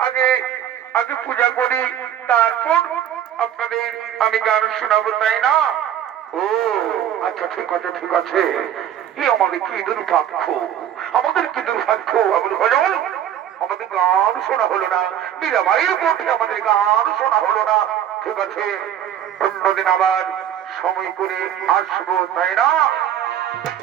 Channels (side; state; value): left; quieter; 10.2 dB